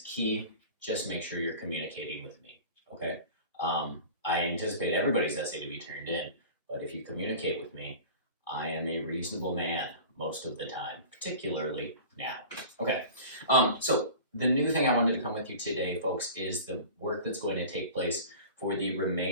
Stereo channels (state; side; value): inverted; both; correlation -0.38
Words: key. Just make sure you're communicating with me, okay? I anticipate everybody's essay to be turned in, but if you communicate with me, I am a reasonable man most of the time, particularly now. Okay, so the new thing I wanted to come with you today, folks, is the work that's going to take place for the